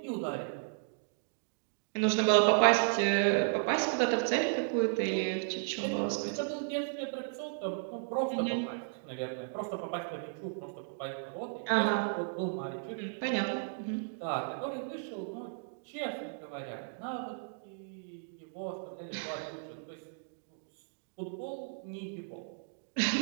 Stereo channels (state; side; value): silent; left; digital silence